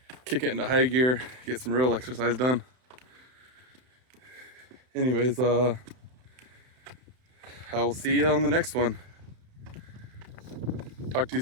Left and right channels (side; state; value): left; late; 31 ms